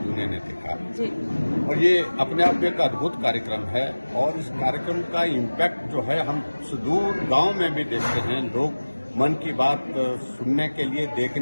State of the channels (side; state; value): both; inverted; correlation -1.00